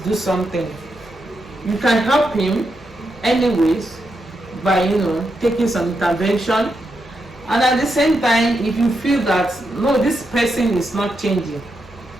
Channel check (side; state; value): both; normal; correlation 0.84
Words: do something. You can help him anyways by taking some intervention. And at the same time, if you feel that no, this person is not changing,